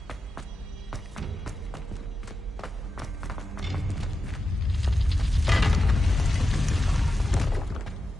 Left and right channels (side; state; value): both; normal; correlation 0.90